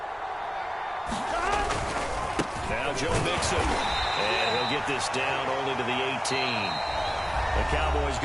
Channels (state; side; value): identical; both; correlation 1.00